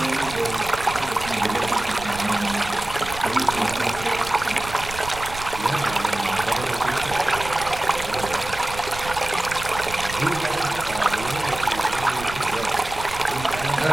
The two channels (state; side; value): noise; right; rumble, 12 dB below the sound